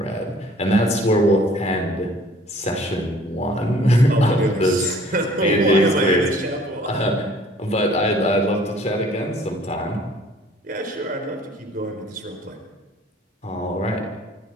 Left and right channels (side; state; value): both; normal; correlation 0.54